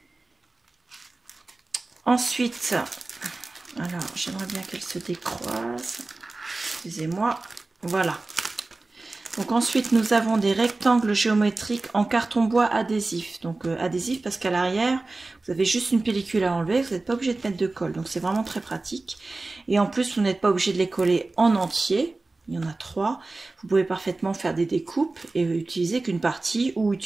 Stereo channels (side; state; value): left; quieter; 3.3 dB